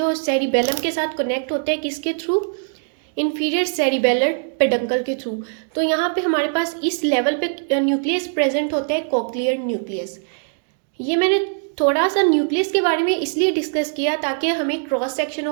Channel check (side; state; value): left; silent; 65 dB below the other